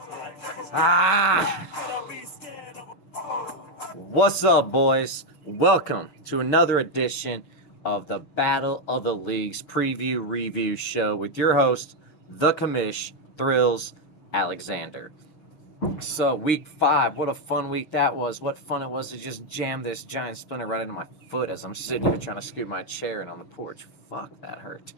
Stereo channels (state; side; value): late; right; 6.5 ms